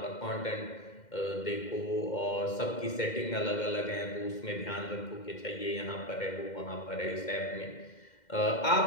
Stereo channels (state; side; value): late; right; 2.1 ms